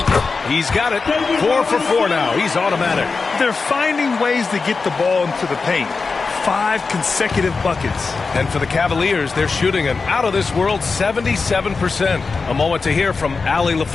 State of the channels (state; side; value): quieter; right; 4.4 dB